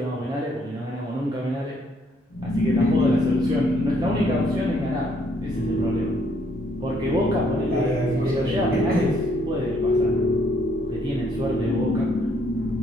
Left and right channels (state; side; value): normal; both; correlation 0.68